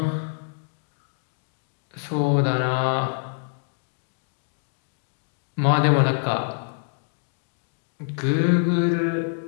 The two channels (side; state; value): right; silent; digital silence